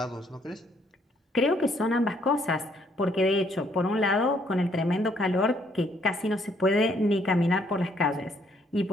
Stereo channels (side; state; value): both; normal; correlation 0.68